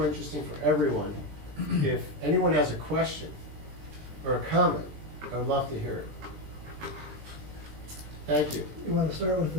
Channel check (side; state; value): left; late; 20 ms